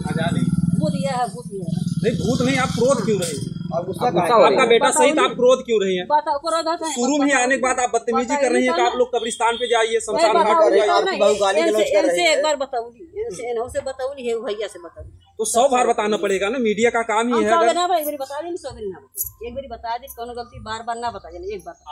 नहीं, भूत नहीं, आप क्रोध क्यों रहे? आपका बेटा सही था, आप क्रोध क्यों रही हैं? शुरू में ही आने के बाद आप बदतमीजी कर रही हैं कि आप लोग कब्रिस्तान पे जाइए, शमशान घाट पे जाइए। एक बार बताऊंगी से बताऊंगी है भैया से बताऊंगी तो 100 बार बताना पड़ेगा ना, मीडिया का काम ही है। एक बार बता दी, 100 बार ना एक बार बता दी, कोनो गलती बार ना बता देना, एक बार।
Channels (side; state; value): both; identical; correlation 1.00